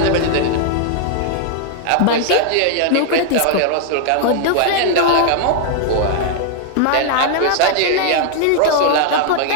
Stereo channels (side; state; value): both; different; correlation 0.00